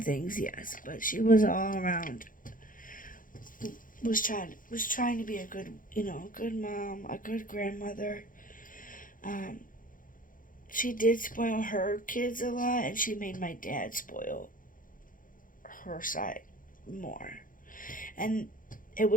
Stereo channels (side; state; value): right; late; 0.40 ms